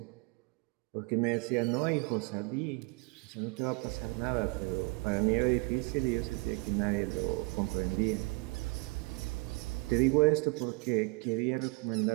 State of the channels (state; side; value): quieter; left; 29.2 dB